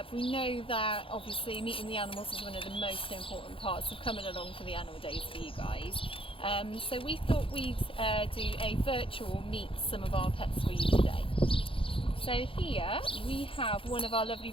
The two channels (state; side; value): late; right; 0.26 ms